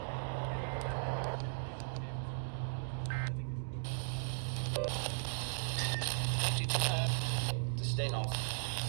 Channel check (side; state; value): left; silent; digital silence